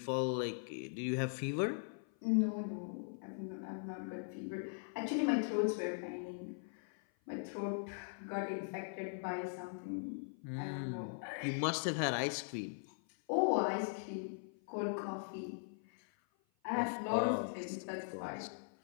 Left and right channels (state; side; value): silent; right; 51 dB below the other